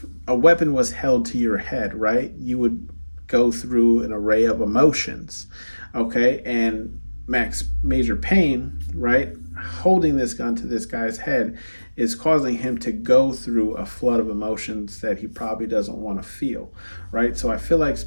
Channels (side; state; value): both; inverted; correlation -1.00